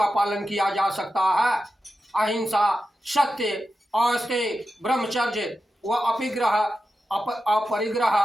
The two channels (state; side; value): normal; both; correlation 0.91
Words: पालन किया जा सकता है। अहिंसा, सत्य, अस्तेय, ब्रह्मचर्य व अपरिग्रह,